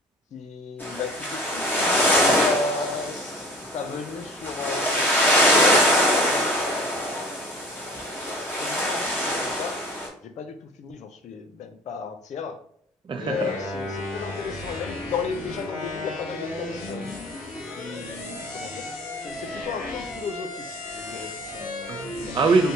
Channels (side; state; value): both; normal; correlation 0.47